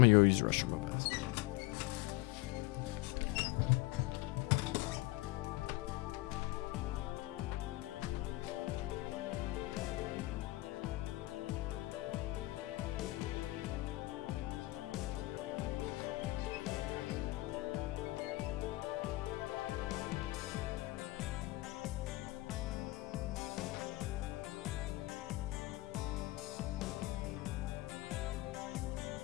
go use the restroom real fast.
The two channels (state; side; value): quieter; right; 19.8 dB